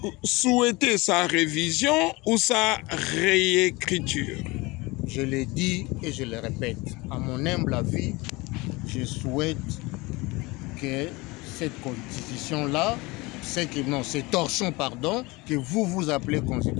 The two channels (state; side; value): quieter; right; 23.5 dB